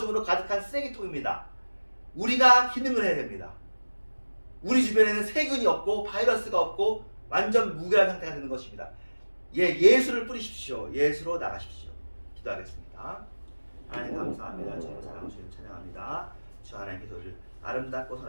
가득한 쓰레기통입니다. 우리가 기능을 해야 됩니다. 우리 주변에는 세균이 없고 바이러스가 없고 완전 무결한 상태가 되는 것입니다. 예수를 뿌리십시오. 예수로 나가십시오. 기도하겠습니다. 하나님 감사합니다. 주님 사랑 주님 찬양합니다. 주 하나님께서 우리를 아름답고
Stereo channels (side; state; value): both; inverted; correlation -1.00